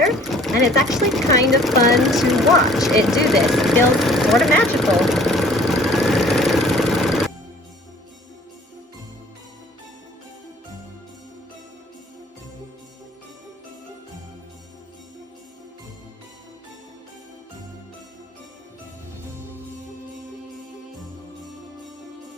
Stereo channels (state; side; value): normal; both; correlation 0.53